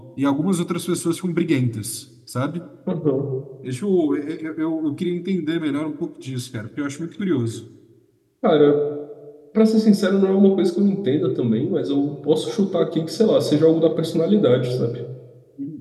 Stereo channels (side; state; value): both; identical; correlation 1.00